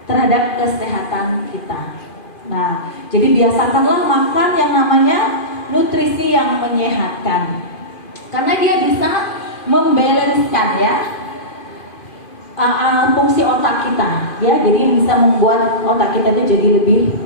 terhadap kesehatan kita. Nah, jadi biasakanlah makan yang namanya nutrisi yang menyehatkan. Karena dia bisa membalanskan ya fungsi otak kita, ya. Jadi bisa membuat otak kita itu jadi lebih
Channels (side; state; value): right; late; 2.5 ms